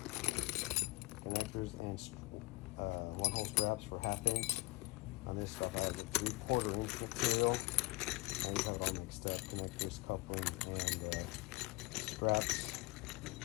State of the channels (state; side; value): quieter; right; 22.8 dB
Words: connectors and 1-hole straps for 1/2-inch. On this stuff I have a 3/4-inch material. And you have it all mixed up, connectors, coupling, and straps.